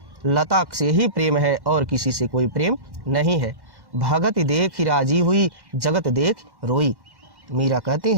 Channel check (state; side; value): late; left; 1.1 ms